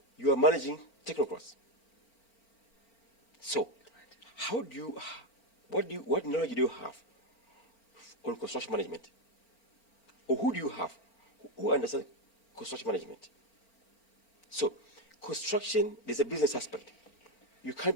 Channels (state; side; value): late; right; 4.0 ms